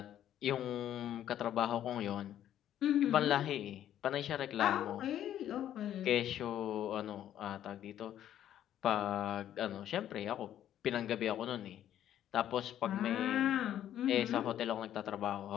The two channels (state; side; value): quieter; right; 11.2 dB